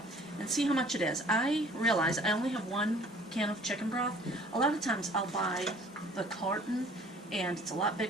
and see how much it is. I realize I only have 1 can of chicken broth. A lot of times I'll buy the carton, and it's a lot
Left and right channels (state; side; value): normal; both; correlation 0.53